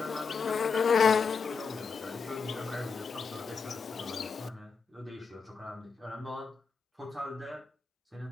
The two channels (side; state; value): right; quieter; 5.3 dB